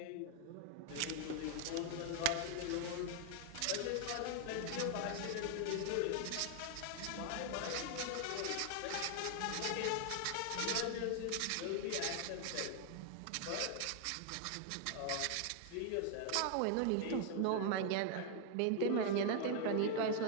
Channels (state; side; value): different; both; correlation 0.00